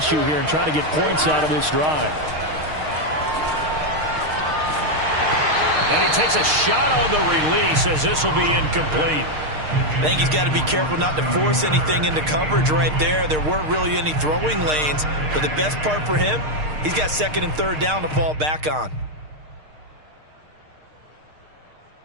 here and try to get points out of this drive. And he takes a shot on the release as this will be incomplete. I think he's got to be careful not to force anything into coverage right there. There weren't really any throwing lanes, but the best part for him, he's got 2nd and 3rd down to fall back on.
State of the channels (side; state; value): left; late; 6.5 ms